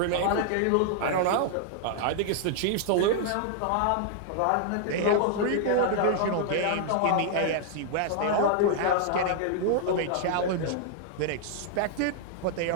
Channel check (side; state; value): both; different; correlation -0.01